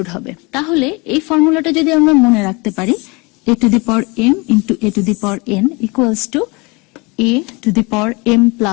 হবে। তাহলে এই ফর্মুলাটা যদি আমরা মনে রাখতে পারি, a to the power m into a to the power n equals to a to the power m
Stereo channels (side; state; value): right; quieter; 27.3 dB